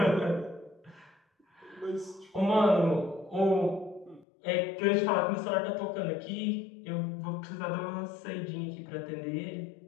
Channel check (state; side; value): drops out; right; at 4.2 s